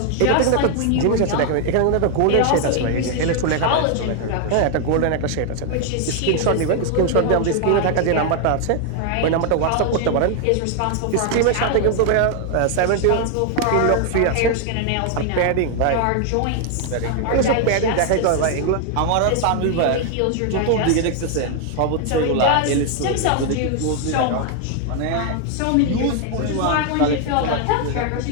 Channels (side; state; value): both; different; correlation 0.00